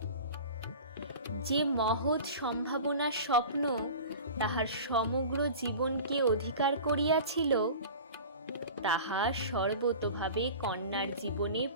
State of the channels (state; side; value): inverted; both; correlation -0.37